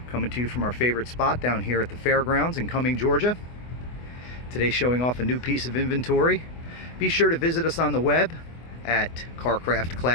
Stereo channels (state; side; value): late; right; 24 ms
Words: coming to you from our favorite spot down here at the fairgrounds in Cumming, Georgia. Today showing off a new piece of inventory. Be sure to visit us on the web at